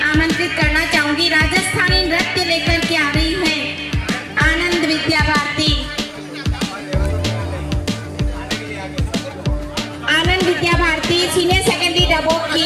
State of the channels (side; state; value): both; identical; correlation 1.00